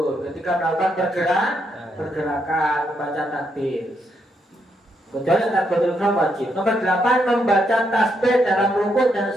ketika melakukan pergerakan membaca takbir. Kecuali takbiratul ihram wajib. Nomor 8 membaca tasbih dalam rukuk dan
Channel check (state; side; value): normal; both; correlation 0.78